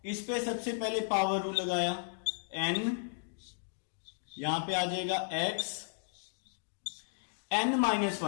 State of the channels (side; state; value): right; silent; digital silence